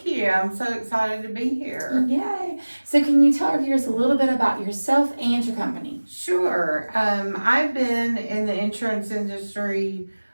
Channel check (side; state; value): both; inverted; correlation -1.00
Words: you. I'm so excited to be here. Yay. So can you tell our viewers a little bit about yourself and your company? Sure. I've been in the insurance industry